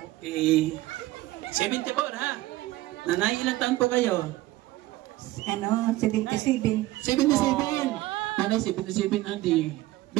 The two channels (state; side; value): quieter; left; 17.3 dB